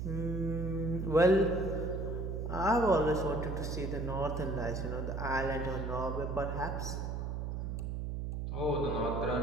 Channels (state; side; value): noise; right; hum, 3 dB below the sound